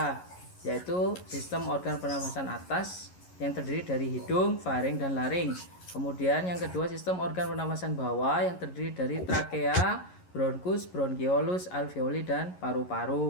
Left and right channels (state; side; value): late; right; 11 ms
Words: yaitu sistem organ pernafasan atas yang terdiri dari hidung, faring, dan laring. Kemudian yang kedua sistem organ pernafasan bawah yang terdiri dari trakea, bronkus, bronkiolus, alveoli, dan